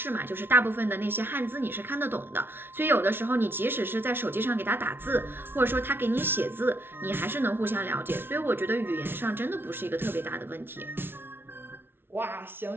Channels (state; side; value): late; left; 0.11 ms